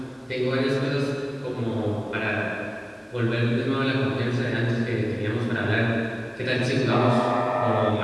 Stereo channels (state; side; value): identical; both; correlation 1.00